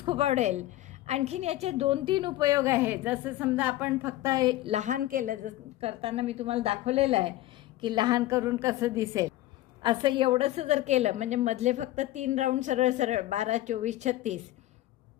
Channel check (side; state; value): right; quieter; 15.5 dB